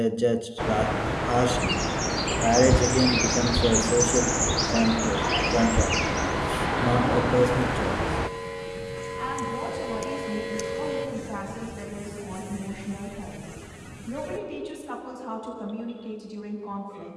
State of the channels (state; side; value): identical; both; correlation 1.00